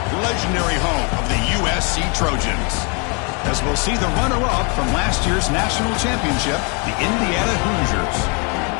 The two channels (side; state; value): right; quieter; 34.7 dB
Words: legendary home of the USC Trojans. As we'll see the runner-up from last year's national championship, the Indiana Hoosiers,